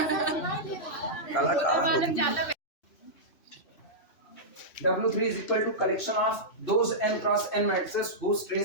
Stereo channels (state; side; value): late; right; 3.0 ms